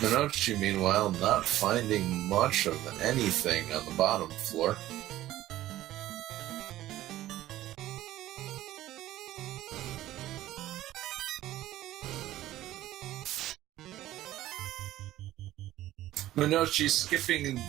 meanwhile, not finding much of anything on the bottom floor. Monoci skipping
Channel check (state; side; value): quieter; left; 14.7 dB